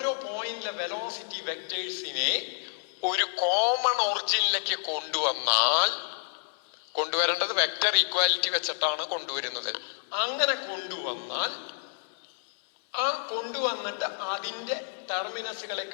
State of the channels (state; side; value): silent; right; 58 dB below the other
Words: പോയിന്റിലെ വെലോസിറ്റി വെക്ടേഴ്സിനെ ഒരു കോമൺ ഒറിജിനിലേക്ക് കൊണ്ടുവരേണ്ടത് വെക്ടർ ഈക്വാലിറ്റി വെച്ചിട്ടാണ് കൊണ്ടുവരുന്നത്. അങ്ങനെ കൊണ്ടുവന്നിട്ട് അതിന്റെ ടെർമിനസുകളെ